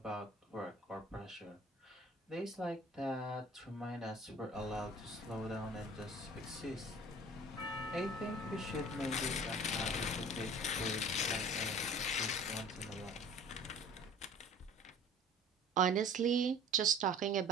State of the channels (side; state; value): both; normal; correlation 0.45